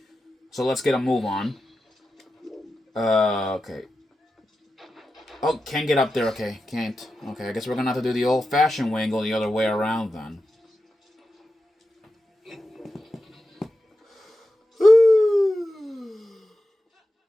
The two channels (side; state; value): both; normal; correlation 0.91